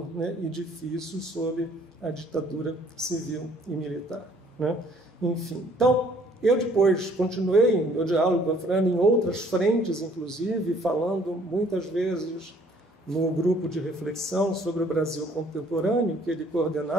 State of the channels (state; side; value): normal; both; correlation 0.60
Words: né, e difícil sob a ditadura civil e militar, né? Enfim, então, eu depois continuei meu diálogo com a Afrânio em outras frentes, inclusive, falando muitas vezes no grupo de reflexão sobre o Brasil contemporâneo, que ele